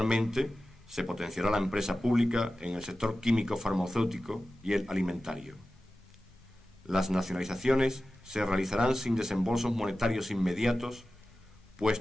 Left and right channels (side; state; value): both; normal; correlation 0.95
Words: se potenciará la empresa pública en el sector químico farmacéutico y el alimentario. Las nacionalizaciones se realizarán sin desembolsos monetarios inmediatos,